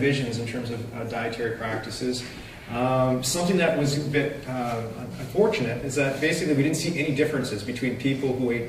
in terms of dietary practices, something that was a bit unfortunate is that basically we didn't see any differences between people who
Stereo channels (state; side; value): identical; both; correlation 1.00